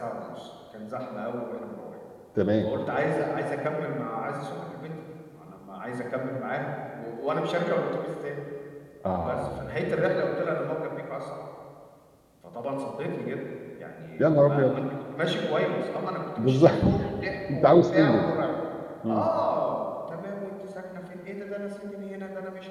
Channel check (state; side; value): identical; both; correlation 1.00